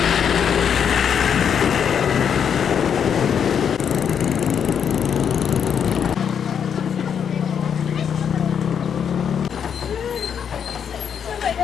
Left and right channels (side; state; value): right; quieter; 7.8 dB